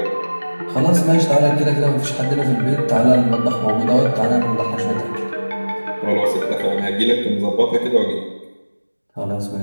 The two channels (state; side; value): inverted; both; correlation -1.00